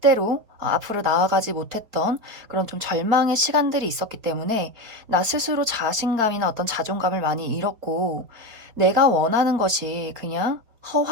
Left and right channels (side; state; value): left; late; 4.2 ms